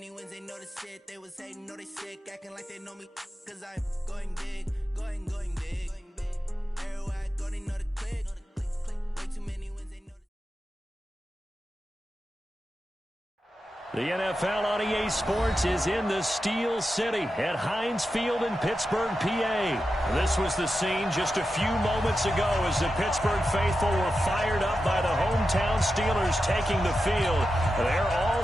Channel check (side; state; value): both; normal; correlation 0.90